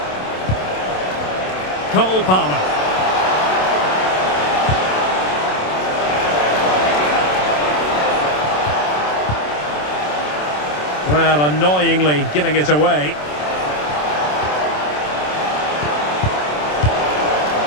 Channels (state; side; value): late; right; 27 ms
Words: Cole Palmer. Well, annoyingly giving it away.